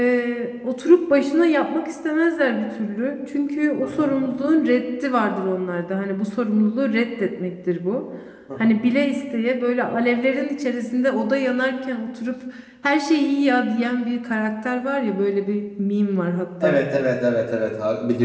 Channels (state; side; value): identical; both; correlation 1.00